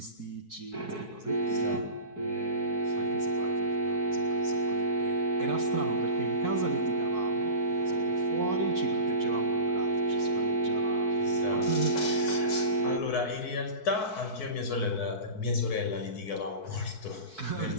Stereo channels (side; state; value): right; late; 4.6 ms